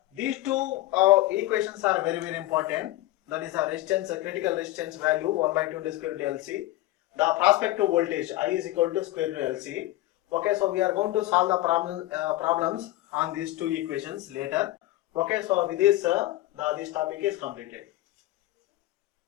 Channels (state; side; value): quieter; right; 16.7 dB